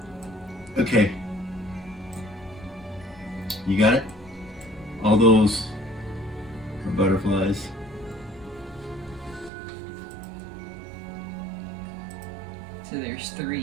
Okay. You got it? All those are butterflies. So there's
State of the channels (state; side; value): drops out; left; at 9.5 s